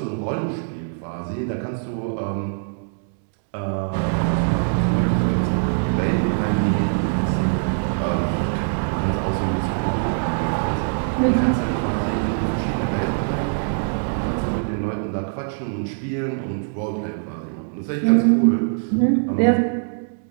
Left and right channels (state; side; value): silent; left; digital silence